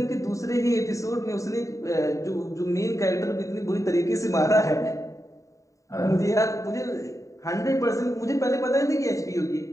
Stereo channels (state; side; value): late; right; 0.16 ms